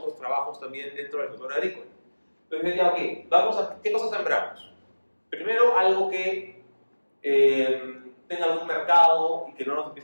trabajos también dentro del sector agrícola. Entonces ya, ok, vamos a, ¿qué cosas sembramos? Primero, algo que tenga algún mercado y que no nos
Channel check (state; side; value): inverted; both; correlation -1.00